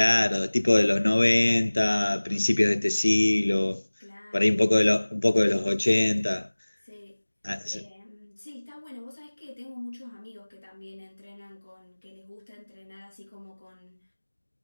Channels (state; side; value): inverted; both; correlation -1.00